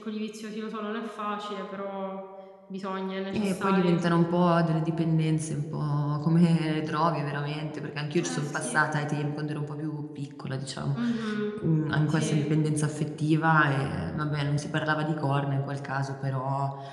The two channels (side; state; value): both; identical; correlation 1.00